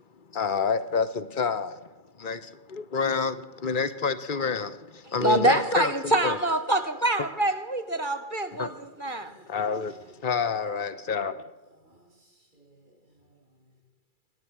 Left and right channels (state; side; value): late; right; 2.3 ms